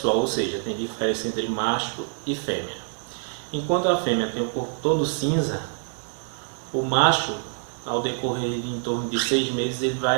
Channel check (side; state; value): left; silent; 58 dB below the other